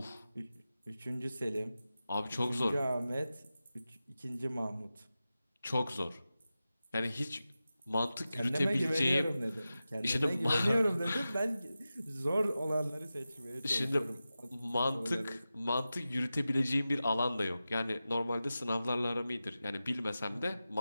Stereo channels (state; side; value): inverted; both; correlation -0.94